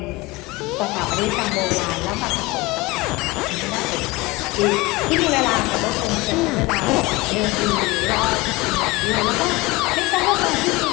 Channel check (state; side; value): quieter; right; 22.3 dB